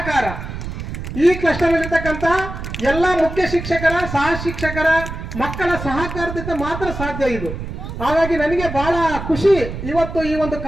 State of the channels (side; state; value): right; noise; rumble, 8 dB below the sound